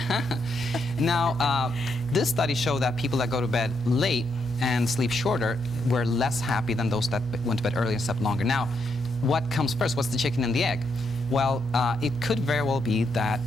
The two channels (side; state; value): both; normal; correlation 0.78